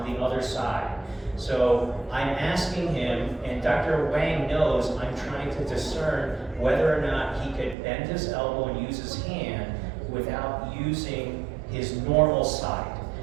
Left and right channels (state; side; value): drops out; left; at 7.8 s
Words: the other side. So I'm asking him, and Dr. Wang knows I'm trying to discern whether or not he could bend his elbow and use his hand without using his normal side.